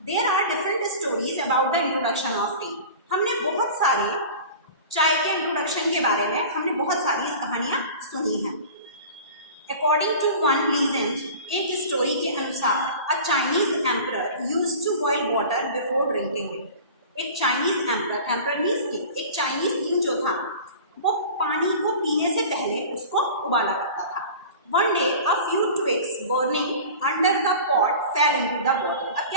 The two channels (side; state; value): both; inverted; correlation -0.38